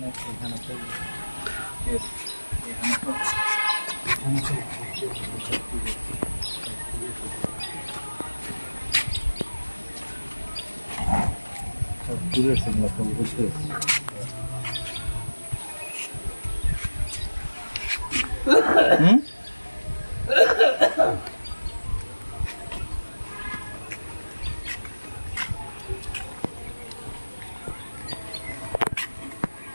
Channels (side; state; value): both; inverted; correlation -1.00